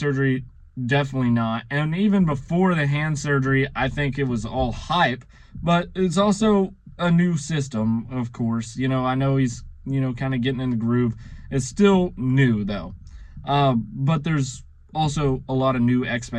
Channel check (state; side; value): identical; both; correlation 1.00